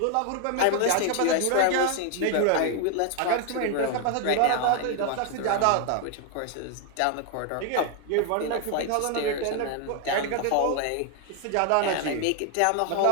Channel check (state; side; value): different; both; correlation 0.00